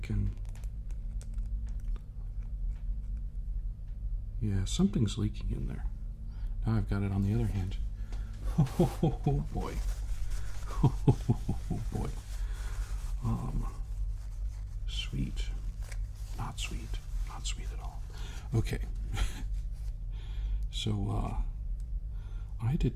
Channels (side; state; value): both; identical; correlation 1.00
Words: can... Yeah, something's leaking in there. Now I've got it on the other hand. Oh boy. Oh boy. Sweet. Not sweet. Not sweet at all. Okay. So, I